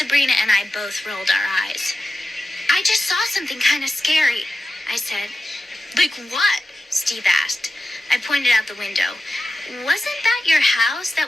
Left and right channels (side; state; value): both; normal; correlation 0.92